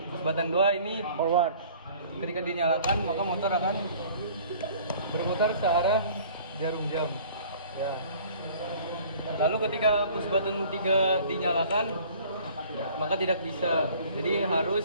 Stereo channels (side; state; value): both; inverted; correlation -0.51